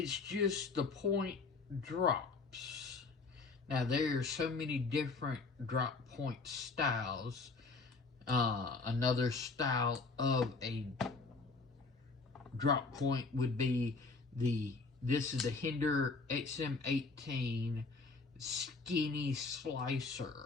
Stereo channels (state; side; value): quieter; right; 3.9 dB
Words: just the point drops. Now there are so many different drop point styles. Another style of a drop point would be this is the Hinder XM18 Skinny